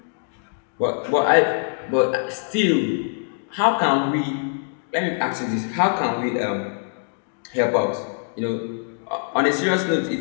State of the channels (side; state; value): right; silent; digital silence